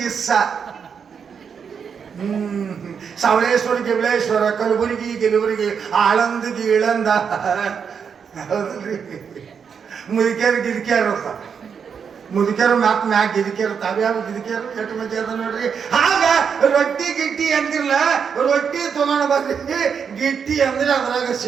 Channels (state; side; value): quieter; left; 6.7 dB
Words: ಗಿಸ್ಸ. ಸವಳೇಶ್ವರ ಗಿವಳೇಶ್ವರ, ಕಲಬುರಗಿ ಗಿಲಬುರಗಿ, ಆಳಂದ ಗೀಳಂದ, ಹೌದಲ್ರಿ. ಮುದುಕ್ಯಾರು ಗಿರಿಕ್ಯಾರು ಮುದುಕ್ಯಾರು ಮ್ಯಾಕ್ ಗಿರಿಕ್ಯಾರು, ತಾವ್ಯಾವ ಗಿರಿಕ್ಯಾರು ಎಷ್ಟು ಮಂದಿ ಅದ ನೋಡ್ರಿ. ಆಗ ರೊಟ್ಟಿ ಗಿಟ್ಟಿ ಅಂತಿರ್ಲ, ರೊಟ್ಟಿ ತೊಗೊಂಡು ಬರ್ರಿ, ಗಿಟ್ಟಿ ಅಂದ್ರೆ ಅದ್ರಾಗ